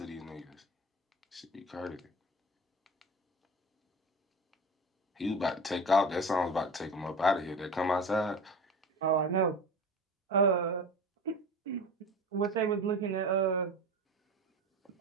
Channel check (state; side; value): normal; both; correlation 0.32